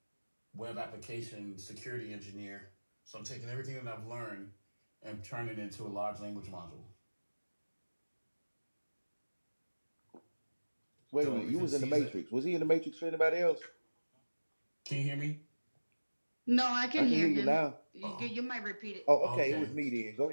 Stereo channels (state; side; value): inverted; both; correlation -1.00